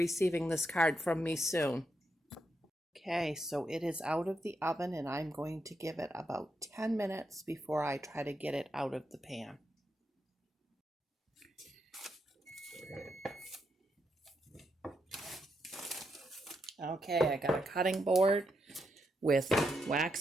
this card from me soon. Okay, so it is out of the oven, and I'm going to give it about 10 minutes before I try to get it out of the pan. Okay, I got a cutting board with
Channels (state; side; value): normal; both; correlation 0.82